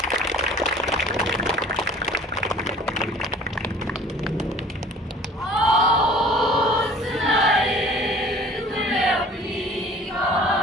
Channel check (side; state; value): both; normal; correlation 0.49